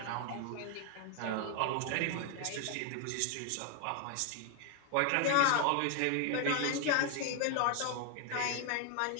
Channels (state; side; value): different; both; correlation 0.00